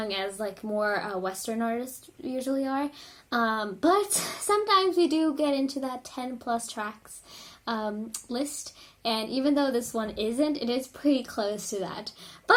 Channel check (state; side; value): identical; both; correlation 1.00